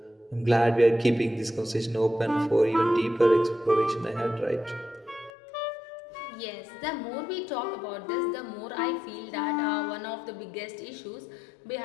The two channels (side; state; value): right; drops out; at 5.3 s